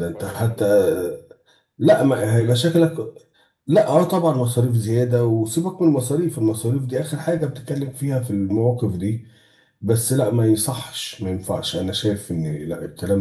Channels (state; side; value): identical; both; correlation 1.00